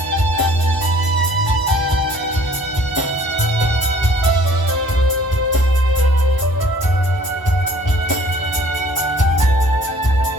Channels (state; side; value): late; right; 1.0 ms